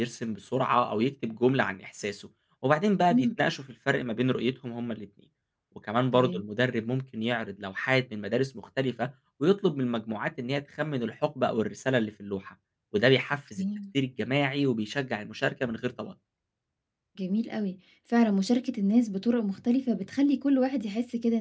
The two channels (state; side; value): identical; both; correlation 1.00